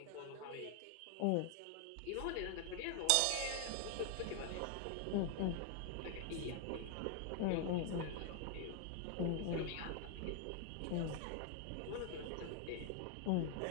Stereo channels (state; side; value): different; both; correlation 0.00